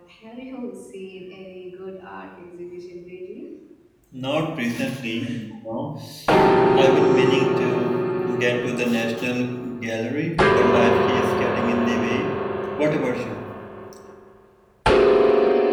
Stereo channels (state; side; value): identical; both; correlation 1.00